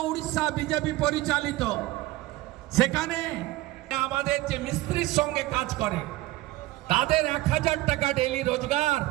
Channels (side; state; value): left; quieter; 18.0 dB